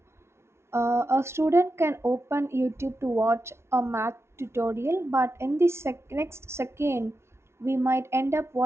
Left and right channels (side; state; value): left; late; 0.13 ms